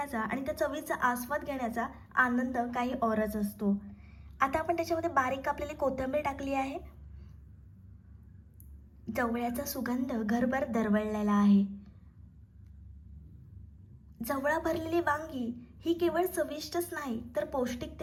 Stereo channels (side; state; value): both; identical; correlation 1.00